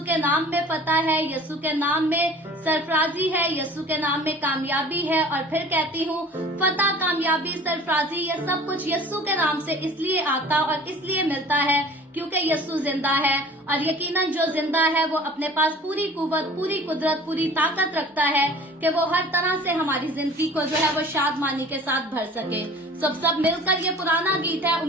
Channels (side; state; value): both; normal; correlation 0.45